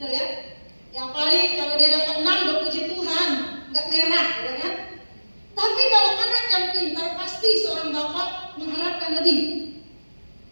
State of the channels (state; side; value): inverted; both; correlation -1.00